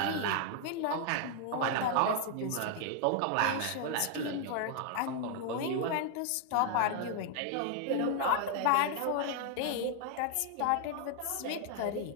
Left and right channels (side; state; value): both; different; correlation 0.00